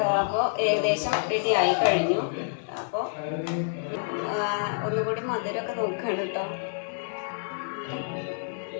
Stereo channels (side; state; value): right; silent; digital silence